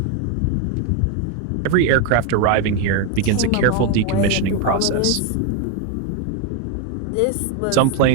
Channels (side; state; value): both; different; correlation 0.01